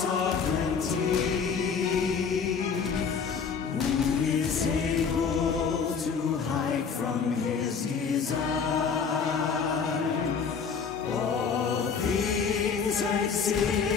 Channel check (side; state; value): right; quieter; 6.0 dB